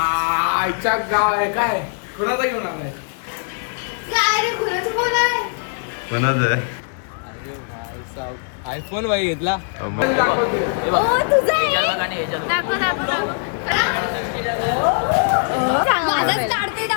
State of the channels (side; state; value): right; silent; 65 dB below the other